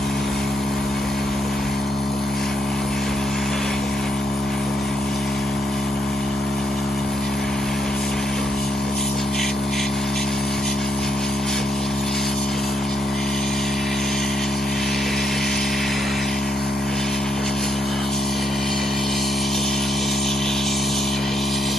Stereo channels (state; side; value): normal; both; correlation 0.77